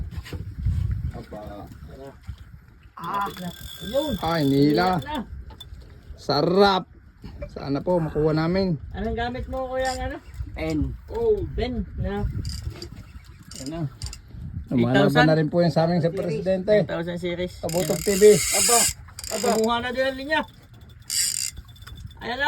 Aba. Yun. Hinila. Na. Sarap. Sana po makuha namin. Anong gamit mo kuya ng ano? Pen. Oh. Ben na. Ano? Lumalaban na rin po yung sa aming sa presidente. 1000 series. Kabutog TV. Aba. Kumuha na din ang linya. Ayan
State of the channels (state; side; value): identical; both; correlation 1.00